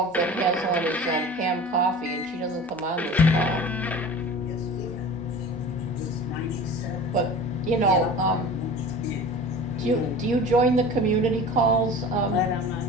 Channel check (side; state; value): both; normal; correlation 0.39